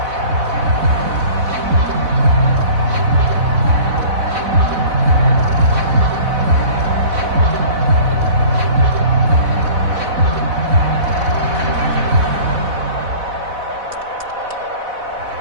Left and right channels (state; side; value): late; left; 4.1 ms